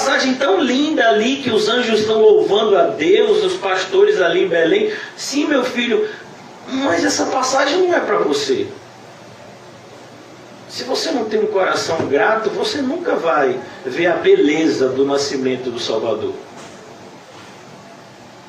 tão linda ali, que os anjos estão louvando a Deus, os pastores ali em Belém. Sim, meu filho, mas essa passagem não é para você. Se você não tem um coração grato, você nunca vai ver a beleza do nascimento do Salvador.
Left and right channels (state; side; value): identical; both; correlation 1.00